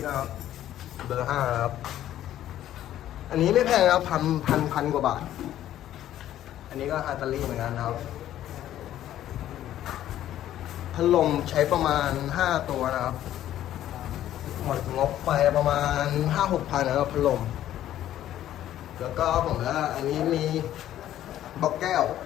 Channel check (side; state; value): right; quieter; 12.4 dB